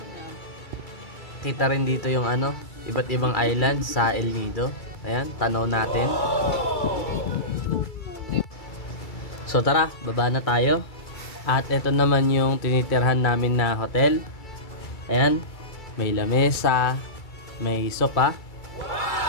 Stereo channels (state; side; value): late; right; 2.3 ms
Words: Kita rin dito yung iba't ibang island sa El Nido. Ayan, tanaw natin. So tara, baba na tayo. At ito naman yung tinitirhan namin na hotel. Ayan, may lamesa, may sopa.